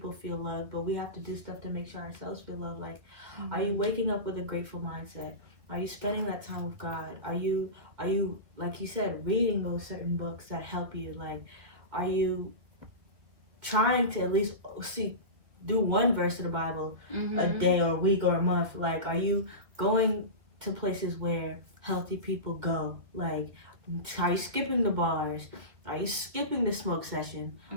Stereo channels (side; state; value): left; late; 2.3 ms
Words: feel loved, but we have to do stuff to make sure ourselves feel loved. Like, are you waking up with a grateful mindset? Are you spending that time with God? Are you like you said, reading those certain books that help you? Like, are you trying to at least do one verse of the Bible a day or a week or a month? Like, are you going to places where healthy people go? Like, are you skipping the bars? Are you skipping the smoke session?